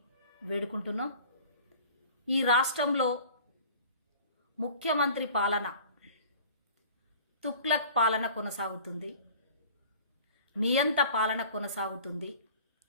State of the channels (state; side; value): inverted; both; correlation -0.45